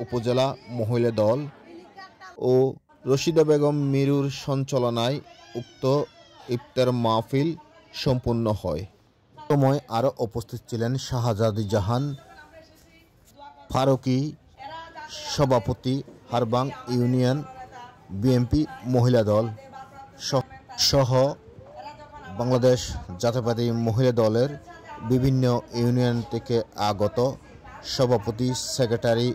উপজেলা মহিলা দল, ও রশিদা বেগম মিরুর সঞ্চালনায় উক্ত ইফতার মাহফিল সম্পূর্ণ হয়। সময় আরও উপস্থিত ছিলেন শাহজাদি জাহান ফারুকি, সভাপতি হারবাং ইউনিয়ন বিএনপি মহিলা দল সহ বাংলাদেশ জাতীয়তাবাদী মহিলা দলের বিভিন্ন ইউনিয়ন থেকে আগত সভাপতি, সেক্রেটারি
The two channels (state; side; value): identical; both; correlation 1.00